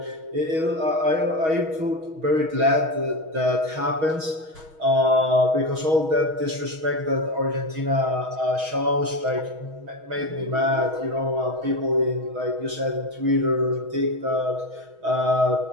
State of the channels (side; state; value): left; late; 6.3 ms